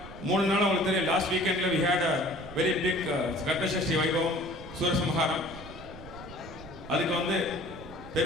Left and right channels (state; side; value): noise; right; rumble, 15 dB below the sound